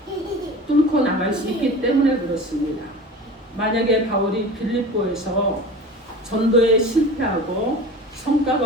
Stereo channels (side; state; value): both; normal; correlation 0.36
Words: 뚫고 나갈 수 있기 때문에 그렇습니다. 만약에 바울이 빌립보에서 전도에 실패하고